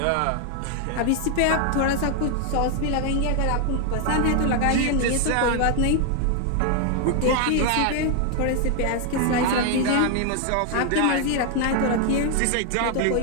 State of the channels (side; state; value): both; different; correlation 0.00